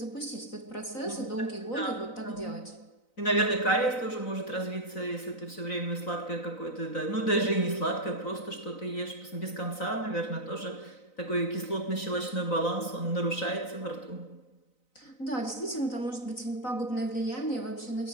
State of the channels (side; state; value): right; late; 3.9 ms